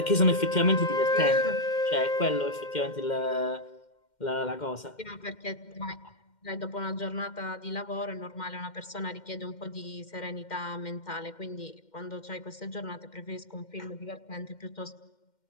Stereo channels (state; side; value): late; right; 2.1 ms